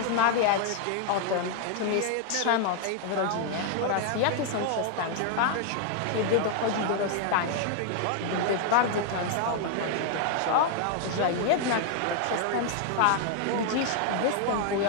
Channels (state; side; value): different; both; correlation 0.00